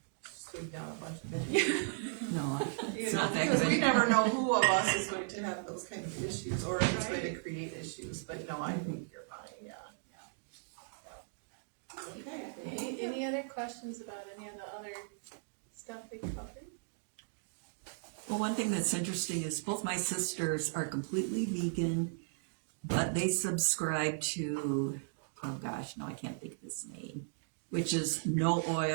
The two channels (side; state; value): left; silent; digital silence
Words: sweep down a bunch of it. No, it's not that Because we good. never know who of us is going to have those kind of issues, or if it's going to create issues. But no, I think you're fine. Yeah. Okay. Any other questions about any of the other stuff we covered? Well, one thing that's interesting is both my sisters are completely vegan, but they subscribe to, oh gosh, no, I can't think of his name, which is no